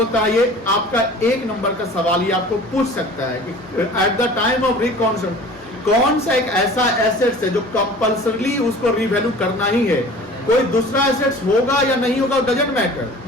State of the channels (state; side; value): normal; both; correlation 0.43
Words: है। ये आपका एक नंबर का सवाल ये आपको पूछ सकता है कि at the time of reconstruction कौन सा एक ऐसा एसेट्स है जो कंपल्सरी उसको रीवैल्यू करना ही है। कोई दूसरा एसेट्स होगा या नहीं होगा डजंट मैटर,